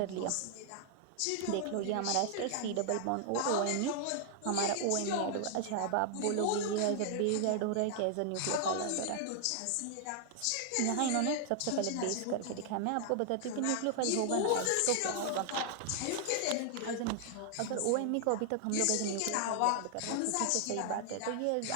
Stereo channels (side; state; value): both; different; correlation 0.00